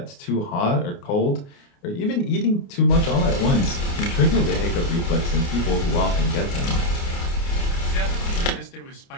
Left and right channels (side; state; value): right; late; 29 ms